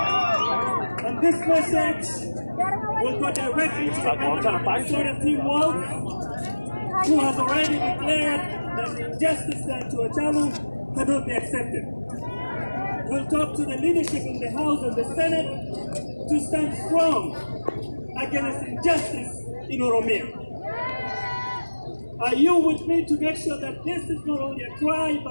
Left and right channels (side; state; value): both; inverted; correlation -1.00